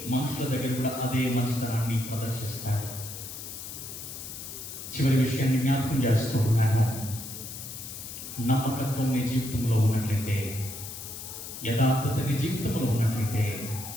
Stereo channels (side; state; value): left; noise; hiss, 10 dB below the sound